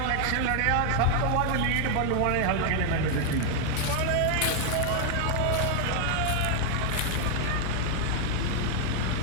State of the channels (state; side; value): different; both; correlation 0.00